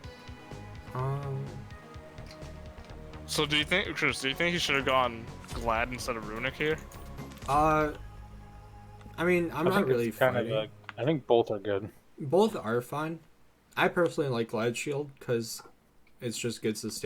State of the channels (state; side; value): identical; both; correlation 1.00